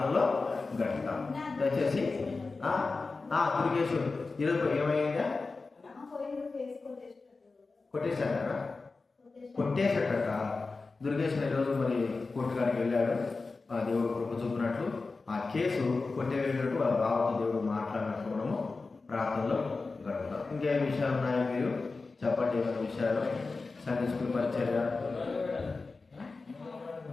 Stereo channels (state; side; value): quieter; right; 3.9 dB